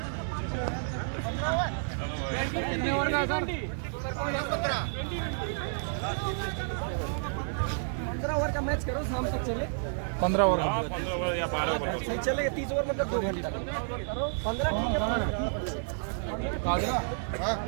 पंद्रह ओवर का मैच करो, शाम तक चले। 15 ओवर। हाँ 15 ओवर या 12 ओवर। चलेगा 30 ओवर मतलब 2 घंटा। 15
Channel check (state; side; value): silent; left; digital silence